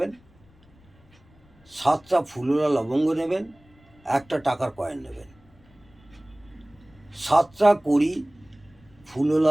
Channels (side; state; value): left; noise; rumble, 29 dB below the sound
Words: 7টা ফুলোরা লবঙ্গ নেবেন, একটা টাকার কয়েন নেবেন। 7টা কড়ি,